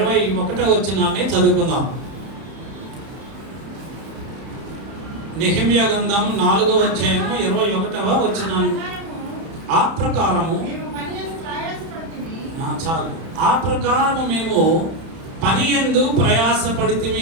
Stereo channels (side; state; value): left; late; 31 ms